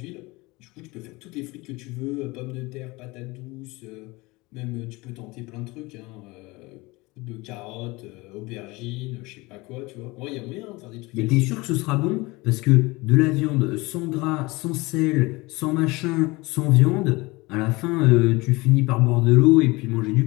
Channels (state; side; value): quieter; right; 23.2 dB